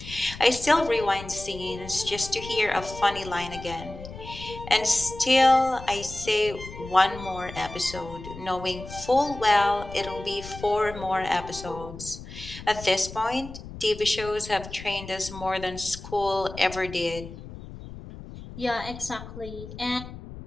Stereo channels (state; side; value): noise; left; rumble, 13 dB below the sound